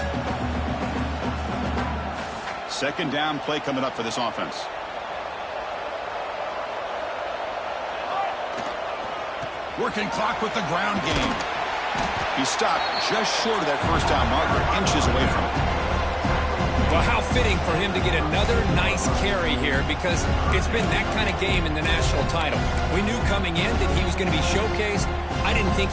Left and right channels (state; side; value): identical; both; correlation 1.00